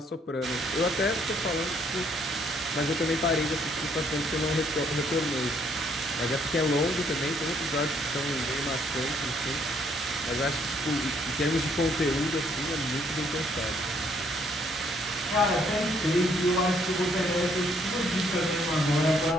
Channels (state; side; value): normal; both; correlation 0.67